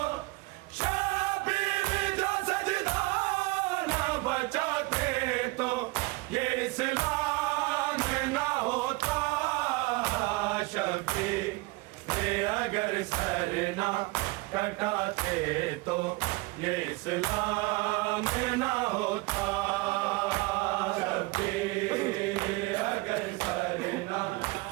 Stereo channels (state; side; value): quieter; left; 23.6 dB